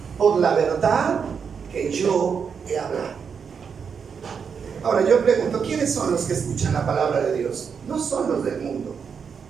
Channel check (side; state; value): left; quieter; 6.4 dB